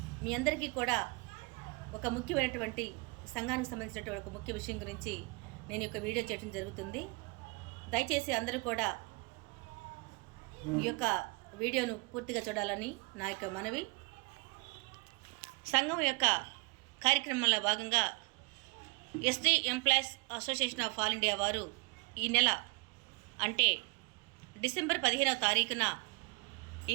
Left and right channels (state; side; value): quieter; left; 29.3 dB